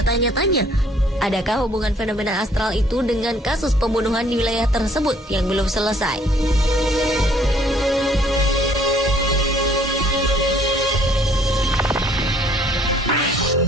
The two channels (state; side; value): normal; both; correlation 0.61